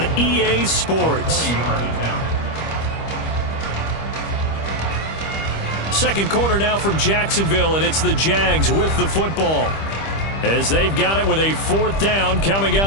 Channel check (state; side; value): late; right; 25 ms